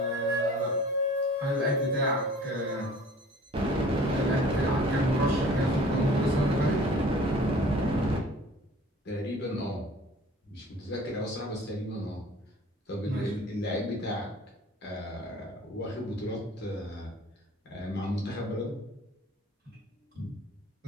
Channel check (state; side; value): normal; both; correlation 0.48